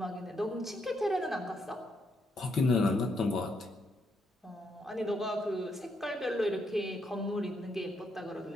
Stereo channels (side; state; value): both; normal; correlation 0.77